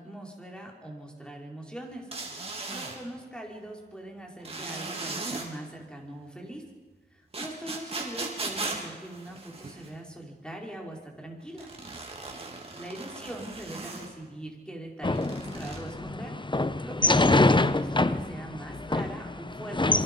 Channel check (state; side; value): normal; both; correlation 0.48